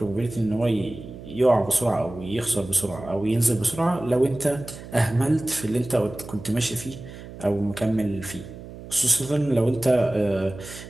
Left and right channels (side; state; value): right; noise; hum, 14 dB below the sound